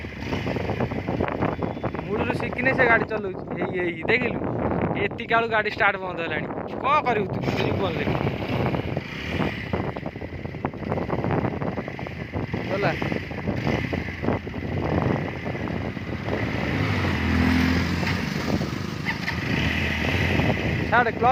मूल शिखिने से गाड़ी चलाऊ देखिलु एति कालू गाड़ी स्टार्ट बंद है कौन करू तू जीवन ले चला छाड़े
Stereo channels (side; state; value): both; identical; correlation 1.00